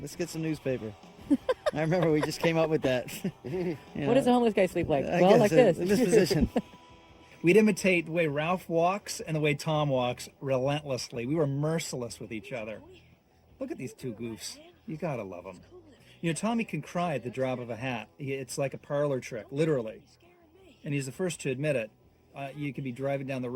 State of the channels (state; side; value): identical; both; correlation 1.00